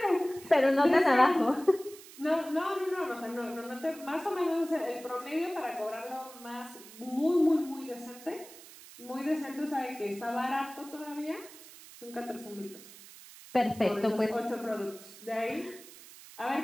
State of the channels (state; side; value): noise; right; hiss, 18 dB below the sound